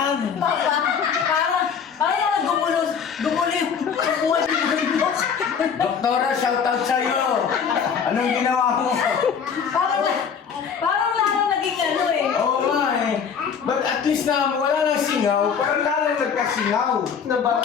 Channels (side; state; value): right; quieter; 6.8 dB